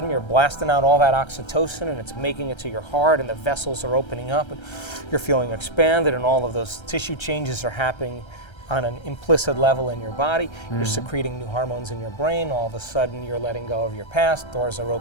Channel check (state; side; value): late; right; 1.3 ms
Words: you're blasting out all that oxytocin and it's making it to your heart and the vessels are opening up and you're feeling expanded and all of those tissue changes are happening on an implicit level in your body. You're secreting new hormones in your brain. All of a sudden you're letting go of your past. Doors are